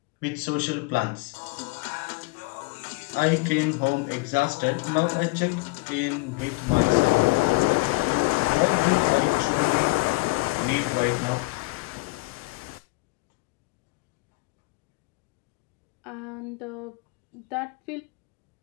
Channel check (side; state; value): right; quieter; 24.7 dB